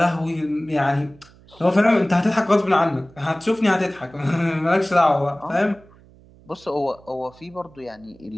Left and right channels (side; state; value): right; noise; hum, 26 dB below the sound